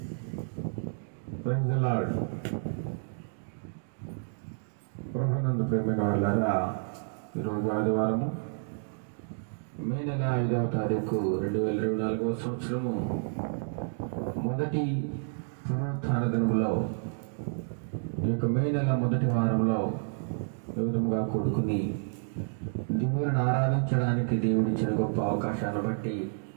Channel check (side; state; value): left; silent; digital silence